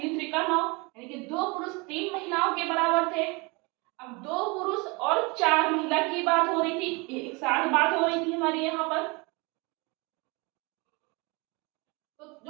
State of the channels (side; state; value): left; quieter; 27.8 dB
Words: त्रिका 9, यानी कि 2 पुरुष 3 महिलाओं के बराबर थे। अब 2 पुरुष और 4 महिला की बात हो रही थी, एक साथ बात हो रही थी हमारी यहाँ पर। तो